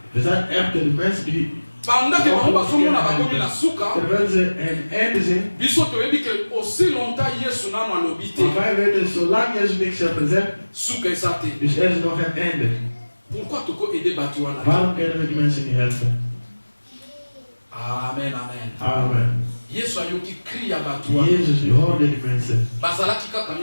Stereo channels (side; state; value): both; inverted; correlation -1.00